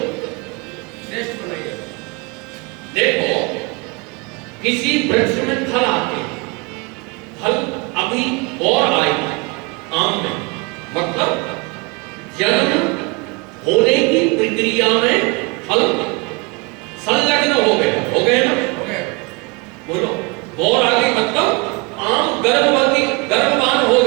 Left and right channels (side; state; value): left; quieter; 28.5 dB